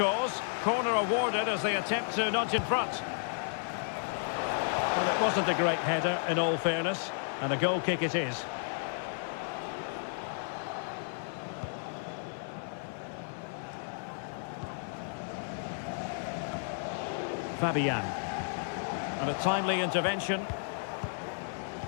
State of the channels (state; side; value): silent; right; digital silence